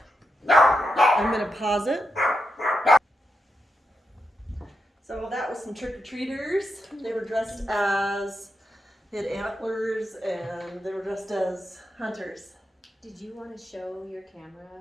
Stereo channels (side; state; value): both; normal; correlation 0.85